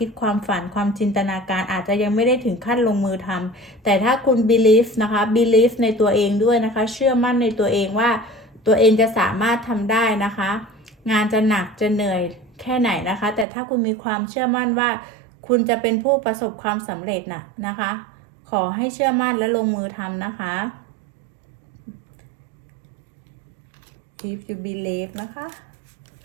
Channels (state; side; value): drops out; left; at 13.5 s